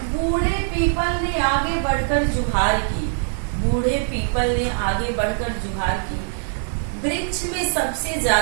बूढ़े पीपल ने आगे बढ़कर जुहार की। बूढ़े पीपल ने आगे बढ़कर जुहार की। वृक्ष में सबसे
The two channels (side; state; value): left; silent; digital silence